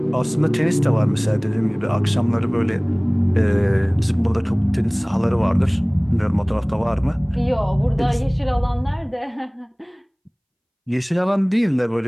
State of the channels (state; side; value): identical; both; correlation 1.00